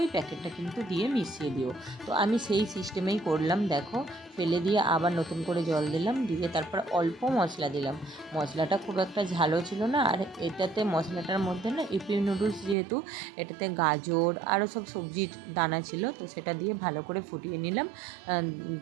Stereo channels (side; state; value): left; drops out; at 12.8 s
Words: ওই প্যাকেটটা কিন্তু দিয়ে মিশিয়ে দিও। তো আমি সেই সিস্টেমেই করলাম। দেখো ফেলে দিয়ে আবার নতুন করে জল দিলাম, দিয়ে তারপর অল্প মশলা দিলাম। মশলাটা খুব একটা ঝালও ছিল না, আর এটাতে মশলাটার মধ্যে না ইপি নুডলস যেহেতু, এটাতে গাজর আরও সব সবজির দানা ছিল, তো সেটা দিয়ে ভালো করে ফুটিয়ে নিলাম।